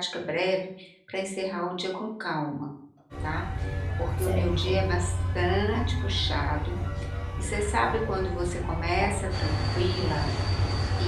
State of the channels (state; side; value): identical; both; correlation 1.00